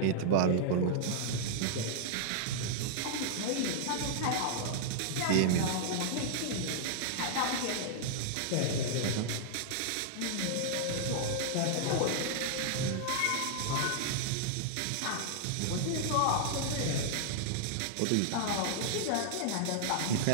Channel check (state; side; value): different; both; correlation -0.01